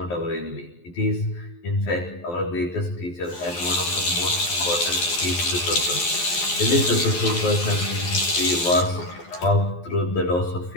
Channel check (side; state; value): right; late; 12 ms